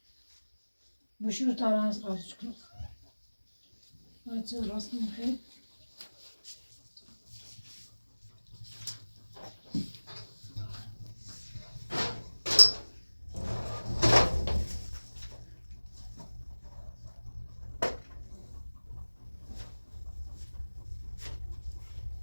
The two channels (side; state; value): both; inverted; correlation -1.00